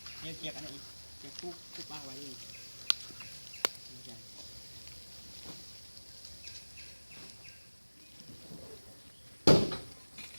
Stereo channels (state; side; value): inverted; both; correlation -1.00